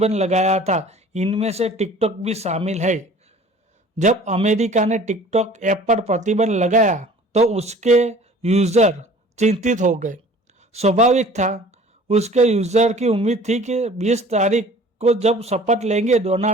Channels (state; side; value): normal; both; correlation 0.48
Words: लगाया था, इनमें से टिकटॉक भी शामिल है। जब अमेरिका ने टिकटॉक ऐप पर प्रतिबंध लगाया तो उसके यूजर चिंतित हो गए। स्वाभाविक था, उसके यूजर की उम्मीद थी कि 20 तारीख को जब शपथ लेंगे